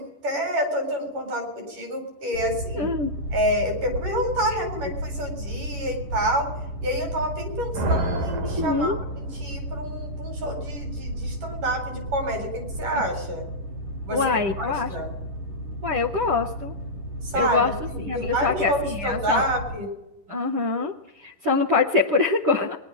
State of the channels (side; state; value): left; late; 10 ms